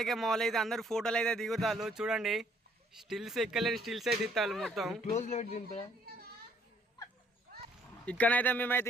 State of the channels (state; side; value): normal; both; correlation 0.64